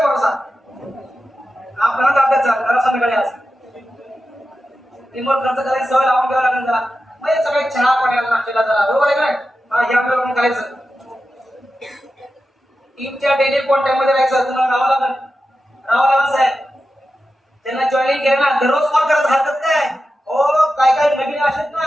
भरोसा? आपल्याला ताब्यात जा जरा संध्याकाळी आज टीमवर खर्च करायची सवय लावून घ्यावं लागेल जरा. मग सगळे चहा पाण्याला नाश्त्याला जरा, बरोबर आहे काय? हा, हे आपल्याला करायचं. टीमच्या डेली कॉन्टॅक्ट मध्ये राहायचं, तुम्हाला राहावं लागेल साहेब. त्यांना जॉईनिंग केलं ना, दररोज कॉल करत राहतात काय? हो, काय नवीन असतात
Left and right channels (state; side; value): normal; both; correlation 0.91